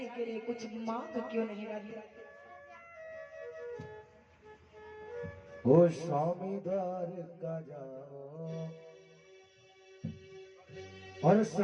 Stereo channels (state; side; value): identical; both; correlation 1.00